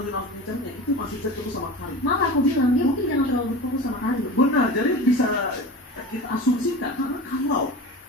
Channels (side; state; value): both; normal; correlation 0.32